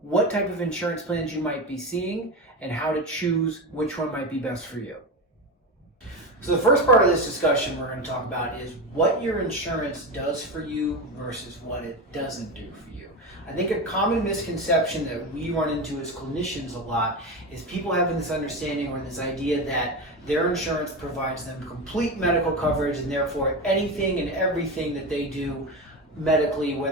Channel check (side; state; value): both; normal; correlation 0.20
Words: what type of insurance plans you might be seeing and how to choose which one might be best for you. So the first part of this discussion we're going to talk about is what your insurance does for you versus what it doesn't do for you. I think a common misconception that we run into as clinicians a lot is people having this understanding or this idea that their insurance provides them complete medical coverage, and therefore anything and everything that they do medically,